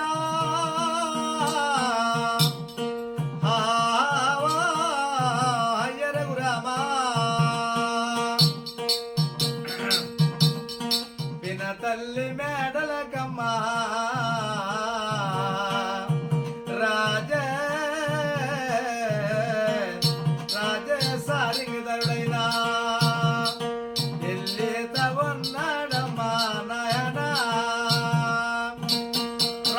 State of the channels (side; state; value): both; identical; correlation 1.00